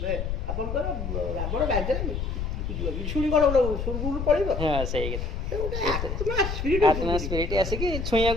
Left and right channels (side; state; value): left; noise; rumble, 3 dB below the sound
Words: ଆପଣଙ୍କର ରାବଣ ଗାଜରେ ବିଶୁଣି କଣ ସ୍ୱର୍ଗକୁ ପଳିବ? ହଁ ସେଇ ଆତ୍ମା ସ୍ପିରିଟ ଆସିକି